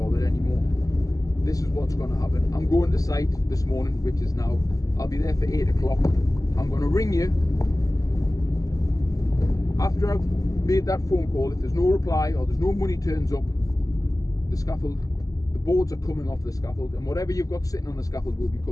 anymore. This is what's going to happen. I'm going to site this morning, which is now. I'll be there for 8 o'clock. I'm going to ring you. After I've made that phone call, if there's no reply or there's no money turns up, the scaffold, the boards are coming off the scaffold, and whatever you've got sitting on the scaffold will be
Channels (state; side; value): late; right; 0.17 ms